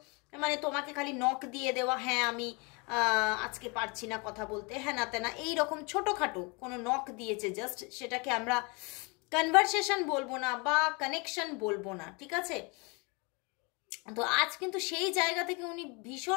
মানে তোমাকে খালি নক দিয়ে দেওয়া, হ্যাঁ আমি আজকে পারছি না কথা বলতে, হ্যাঁ না তেনা এইরকম ছোটোখাটো কোনো নক দিয়েছে জাস্ট, সেটাকে আমরা কনভারসেশন বলবো না বা কানেকশন বলবো না, ঠিক আছে। তো আজ কিন্তু সেই জায়গা থেকে উনি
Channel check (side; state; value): right; quieter; 30.0 dB